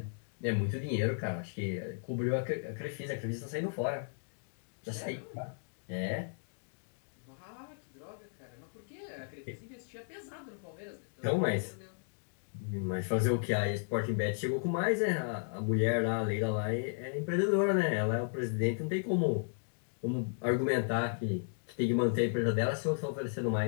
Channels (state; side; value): silent; right; digital silence